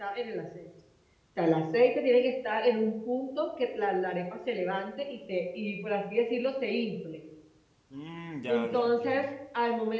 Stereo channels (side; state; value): both; identical; correlation 1.00